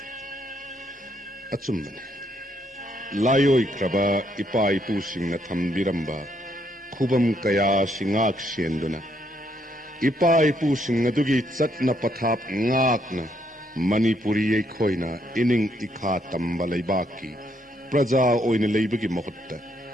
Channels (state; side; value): normal; both; correlation 0.73